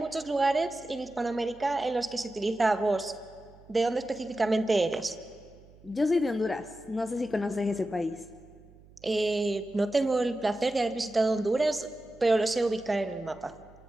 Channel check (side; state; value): right; noise; hum, 24 dB below the sound